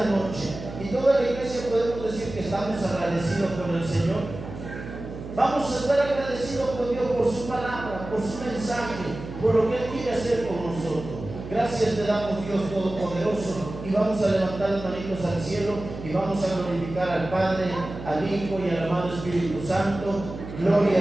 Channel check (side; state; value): right; noise; hum, 11 dB below the sound